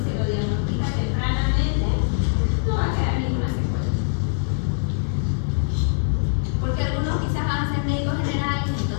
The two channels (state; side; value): silent; right; 57 dB below the other